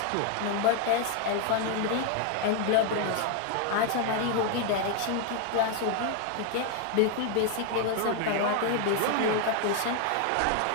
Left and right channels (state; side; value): different; both; correlation 0.00